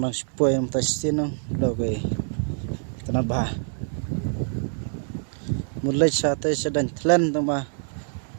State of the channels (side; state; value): left; silent; 61 dB below the other